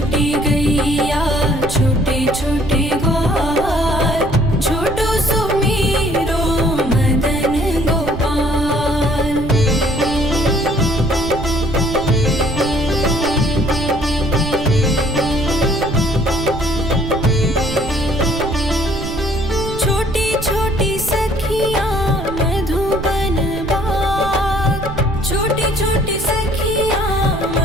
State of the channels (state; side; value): noise; right; rumble, 9 dB below the sound